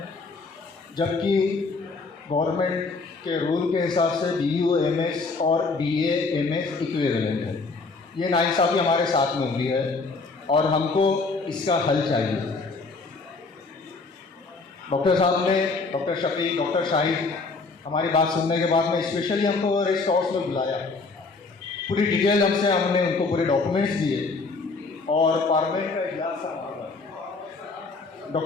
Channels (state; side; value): quieter; right; 4.0 dB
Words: जबकि गवर्नमेंट के रूल के हिसाब से BUMS और BAMS इक्विवेलेंट है। ये नाइंसाफ़ी हमारे साथ में हुई है और हमको इसका हल चाहिए। डॉक्टर साहब ने, डॉक्टर शफीक, डॉक्टर शाहिद हमारी बात सुनने के बाद में स्पेशली हमको रेस्ट हाउस में बुलाया, पूरी डिटेल हमने उनको पूरे डॉक्यूमेंट्स दिए और पार्लियामेंट का इजलास था।